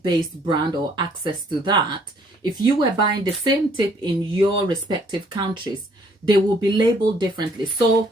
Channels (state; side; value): normal; both; correlation 0.63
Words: based brand or access to that, if you were buying the same tip in your respective countries, they will be labeled differently. So